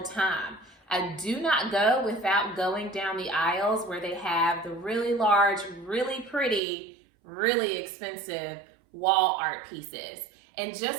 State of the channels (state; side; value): drops out; left; at 6.6 s